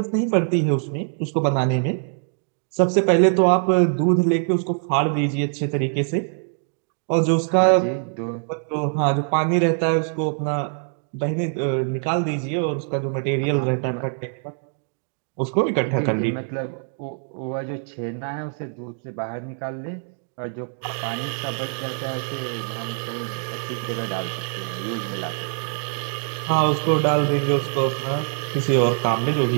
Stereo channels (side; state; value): left; silent; 58 dB below the other